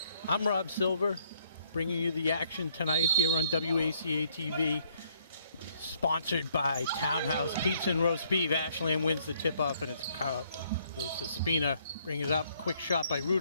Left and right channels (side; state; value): both; inverted; correlation -0.67